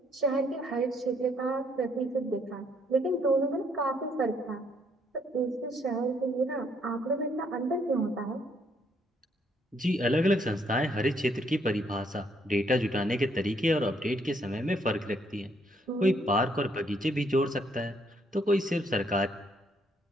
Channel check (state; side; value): normal; both; correlation 0.70